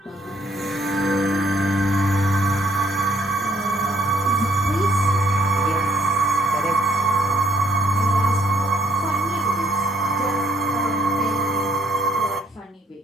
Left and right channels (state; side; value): normal; both; correlation 0.67